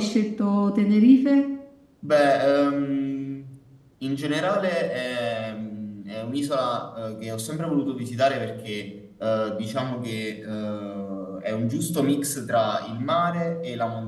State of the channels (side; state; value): both; identical; correlation 1.00